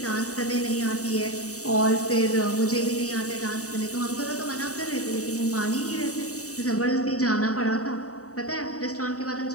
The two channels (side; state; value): right; late; 0.66 ms